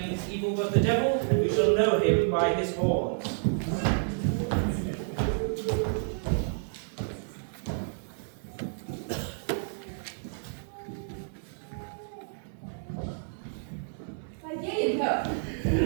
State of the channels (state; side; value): silent; left; digital silence